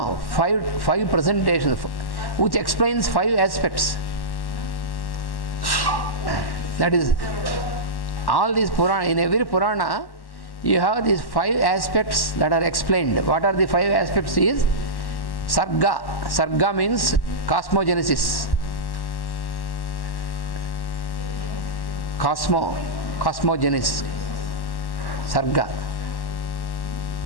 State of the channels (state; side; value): late; right; 1.1 ms